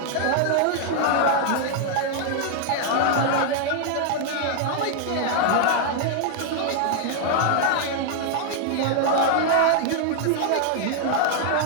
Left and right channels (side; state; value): both; different; correlation 0.00